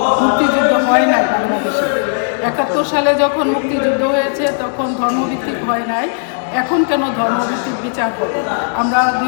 মুক্তিযুদ্ধ হয় নাই বাংলাদেশে। 71 সালে যখন মুক্তিযুদ্ধ হয়েছে তখন ধর্মভিত্তিক হয় নাই। এখন কেন ধর্মভিত্তিক বিচার হবে? আমরা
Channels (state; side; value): silent; right; digital silence